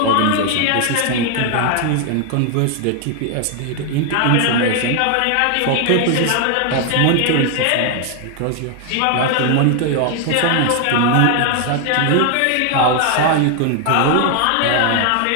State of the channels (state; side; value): different; both; correlation 0.00